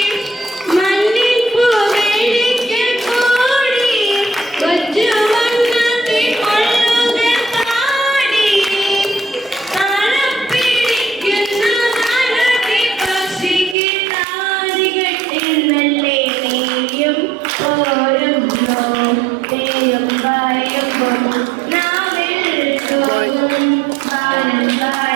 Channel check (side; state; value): left; drops out; at 13.8 s